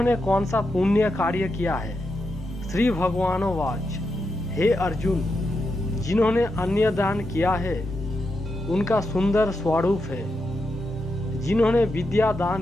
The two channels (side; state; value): both; normal; correlation 0.85